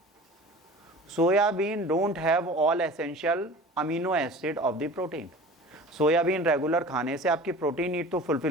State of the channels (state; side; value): normal; both; correlation 0.40